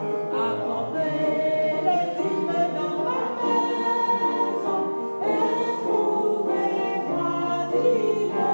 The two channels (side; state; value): both; inverted; correlation -1.00